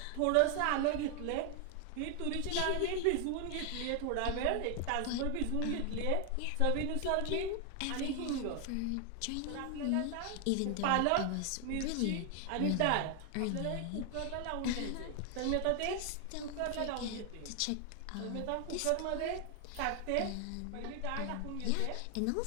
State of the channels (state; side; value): different; both; correlation 0.00